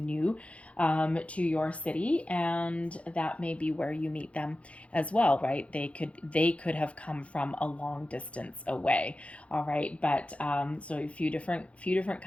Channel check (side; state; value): right; late; 0.063 ms